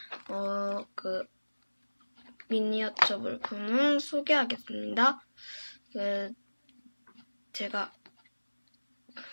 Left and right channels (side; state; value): both; inverted; correlation -1.00